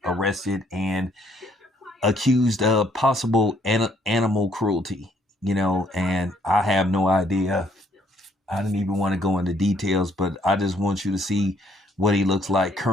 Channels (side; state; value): both; normal; correlation 0.66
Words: arrested and accused of possible animal cruelty, and I have no idea. I didn't even want to go into details, but I just want you to see what he looks like